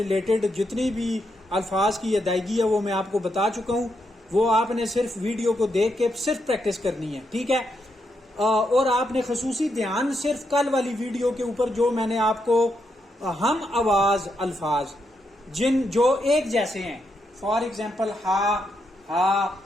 جتنی بھی الفاظ کی ادائیگی ہے وہ میں آپ کو بتا چکا ہوں، وہ آپ نے صرف ویڈیو کو دیکھ کے صرف پریکٹس کرنی ہے، ٹھیک ہے؟ اور آپ نے خصوصی دھیان صرف کل والی ویڈیو کے اوپر جو میں نے آپ کو ہم آواز الفاظ جو ایک جیسے ہیں، فار ایگزامپل ہا،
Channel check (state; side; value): normal; both; correlation 0.81